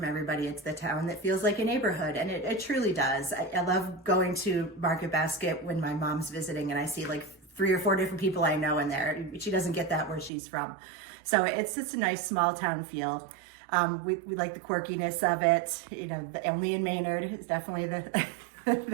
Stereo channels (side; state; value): left; drops out; at 10.3 s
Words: everybody. It's the town that feels like a neighborhood, and it truly does. I love going to Market Basket when my mom's visiting and I see like 3 or 4 different people I know in there. She doesn't get that where she's from. So it's just a nice small town feel. We like the quirkiness of it. You know, the only in Maynard is definitely the